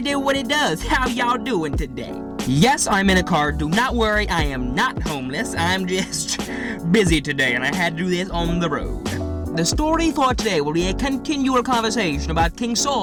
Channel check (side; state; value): both; identical; correlation 1.00